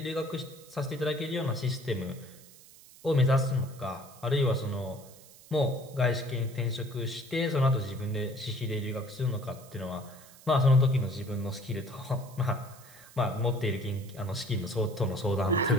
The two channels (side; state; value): right; noise; hiss, 22 dB below the sound